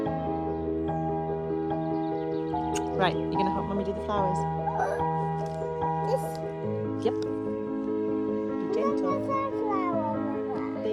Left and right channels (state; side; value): identical; both; correlation 1.00